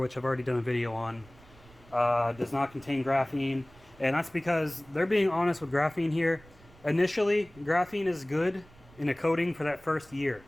I've already done a video on, does not contain graphene. And that's because they're being honest with graphene here. Initially, graphene is good in a coating for that first year.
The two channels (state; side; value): noise; right; rumble, 25 dB below the sound